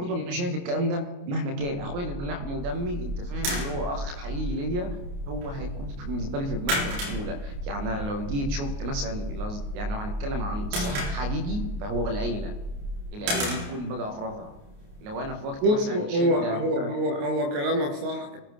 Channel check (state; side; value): late; left; 29 ms